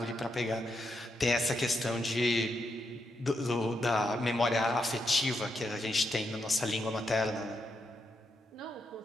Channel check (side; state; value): both; normal; correlation 0.82